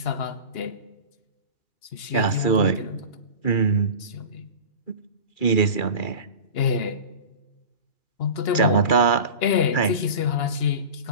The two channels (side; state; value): right; late; 2.9 ms